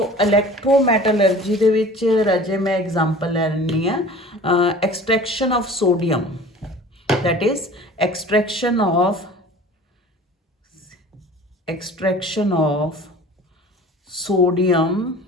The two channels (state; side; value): normal; both; correlation 0.43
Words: ਇਲੈਕਟ੍ਰੋਮੈਟਲਰਜੀ ਦੇ ਵਿੱਚ ਰਾਜੇ ਮੈਂ ਐਗਜ਼ਾਮਪਲ ਲੈ ਲੈਂਦੀ ਹਾਂ extraction of sodium, that is extraction of sodium